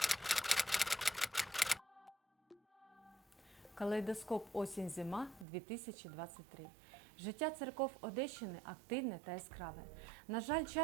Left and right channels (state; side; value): drops out; left; at 5.5 s